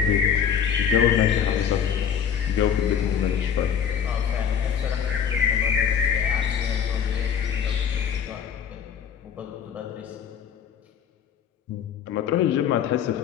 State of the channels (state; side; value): quieter; right; 8.0 dB